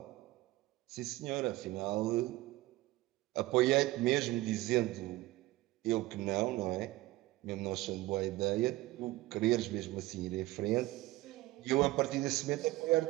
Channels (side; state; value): left; quieter; 18.4 dB